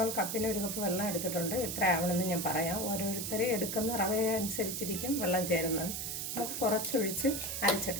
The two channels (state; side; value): noise; right; hiss, 3 dB below the sound